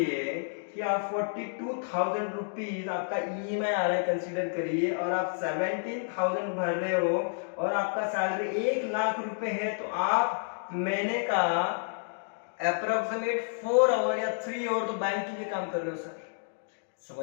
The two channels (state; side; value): silent; right; digital silence